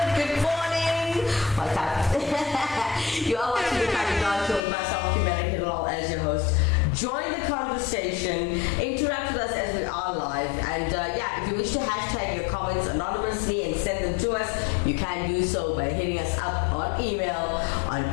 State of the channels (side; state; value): right; drops out; at 4.6 s